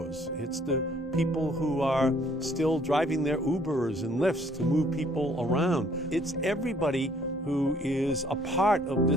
It's the people who are still driving their Ubers and Lyfts to move people around. It's everybody who is a part of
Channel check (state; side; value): normal; both; correlation 0.61